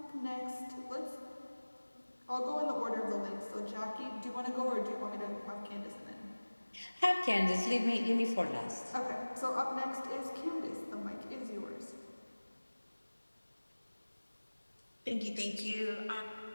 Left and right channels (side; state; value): both; inverted; correlation -1.00